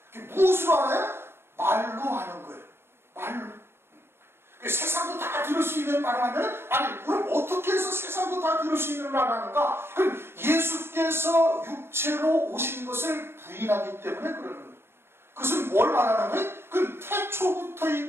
무엇으로 알아요? 말로 하는 거예요. 말로. 세상도 다 들을 수 있는 말을 하면, 아니 그럼 어떻게 해서 세상도 다 들을 수 있는 말을 하는가? 그럼 예수께서 육체로 오신 것을 부인하기 때문에 그러는 거예요. 그것은 뭘 말하는 거예요? 그 태초부터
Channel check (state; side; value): late; left; 0.11 ms